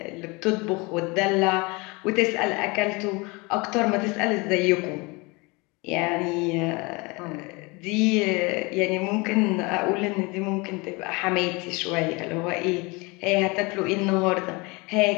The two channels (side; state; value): right; quieter; 26.6 dB